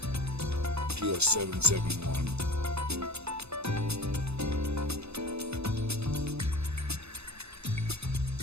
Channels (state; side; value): late; left; 0.79 ms